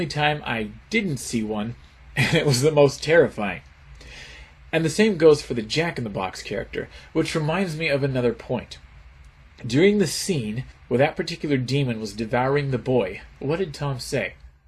time I didn't see one, and it was the most terrifying. And the same goes for the Jack-in-the-Box character, which reminds me of another point. During the scene where that particular demon was devouring the boy, what did Tom say?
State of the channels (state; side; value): identical; both; correlation 1.00